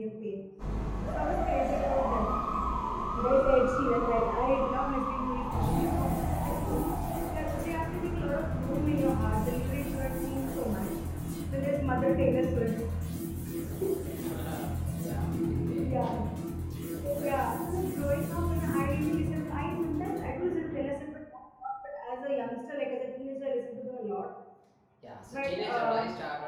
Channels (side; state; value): both; identical; correlation 1.00